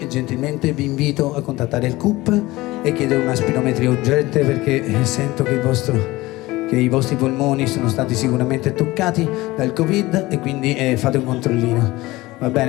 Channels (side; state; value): right; quieter; 19.5 dB